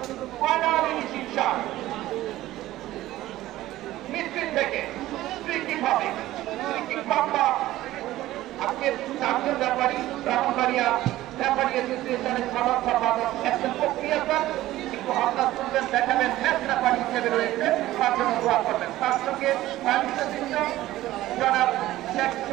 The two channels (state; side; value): quieter; left; 15.5 dB